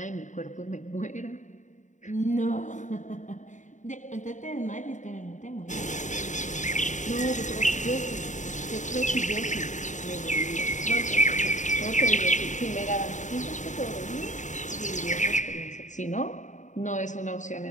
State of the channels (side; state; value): right; late; 0.36 ms